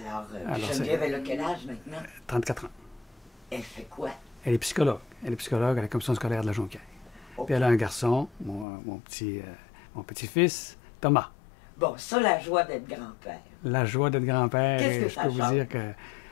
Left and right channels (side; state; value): right; drops out; at 8.7 s